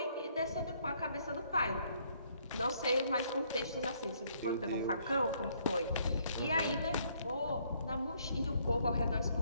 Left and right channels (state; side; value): inverted; both; correlation -0.67